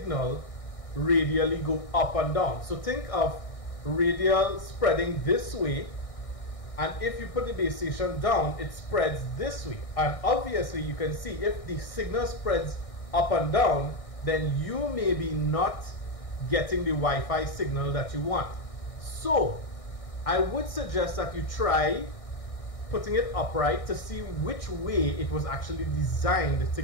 radially go up and down. So think of radial spreading this way, and if you put the base station down, it spreads this way. And obviously you can see if the signal spreads up and down, then you may be not getting the Wi-Fi signal that you want. So I would suggest that you try putting it upright to see which way it was actually designed to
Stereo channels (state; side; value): late; right; 1.6 ms